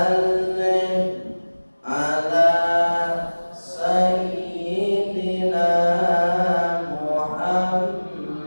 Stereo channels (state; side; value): inverted; both; correlation -1.00